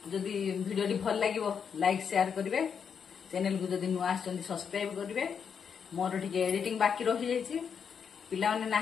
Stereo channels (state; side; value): quieter; right; 6.9 dB